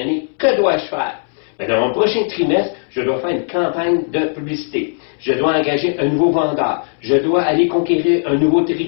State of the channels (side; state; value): right; silent; 68 dB below the other